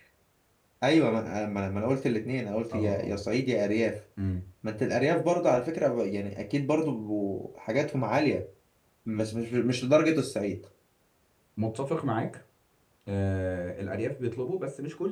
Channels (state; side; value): identical; both; correlation 1.00